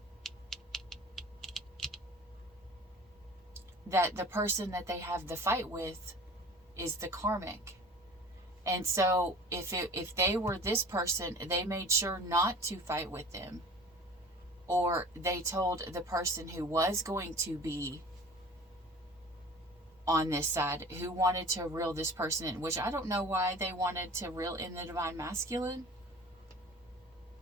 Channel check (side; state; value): both; normal; correlation 0.42